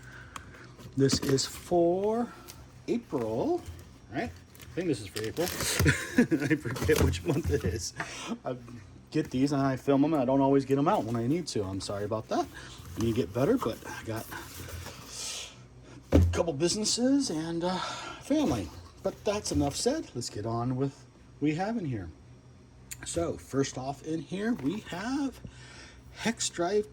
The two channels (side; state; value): both; identical; correlation 1.00